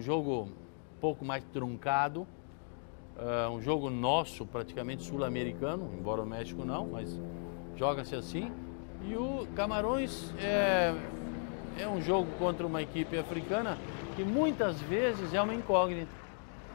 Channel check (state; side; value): silent; right; 54 dB below the other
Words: jogo um pouco mais truncado, um jogo nosso, praticamente sul-americano, embora o México não, mas joga-se assim. E o Camarões é um jogo contra uma equipe africana que muitas vezes é uma incógnita.